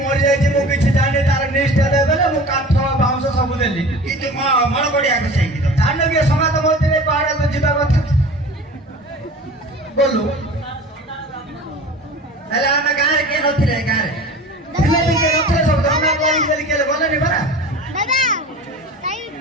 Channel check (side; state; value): both; normal; correlation 0.39